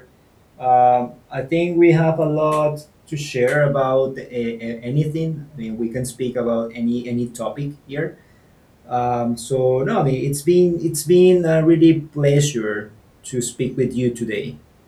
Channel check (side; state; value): both; identical; correlation 1.00